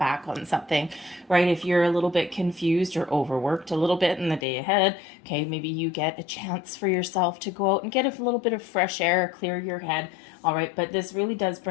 on something, right? If you're a little bit confused or overworked a little bit in the day ahead, okay, maybe you get a chance for yourself to go out and get a little bit of fresh air, clear your head, all right? But this really does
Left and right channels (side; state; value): right; drops out; at 4.5 s